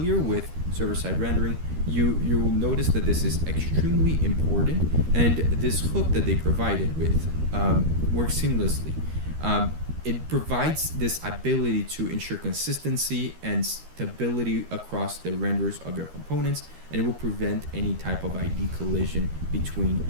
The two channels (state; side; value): late; left; 13 ms